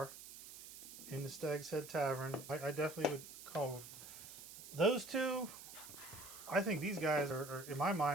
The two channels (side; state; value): right; noise; hiss, 14 dB below the sound